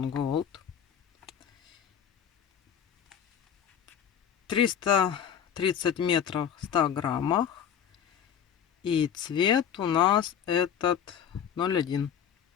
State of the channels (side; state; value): right; quieter; 8.6 dB